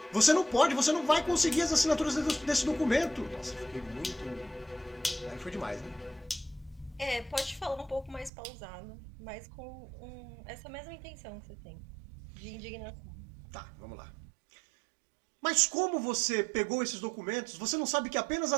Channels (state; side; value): drops out; left; at 8.3 s